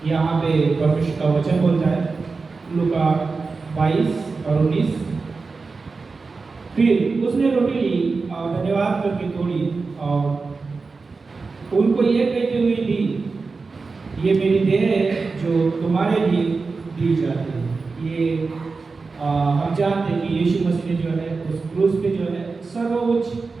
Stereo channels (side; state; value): left; quieter; 4.3 dB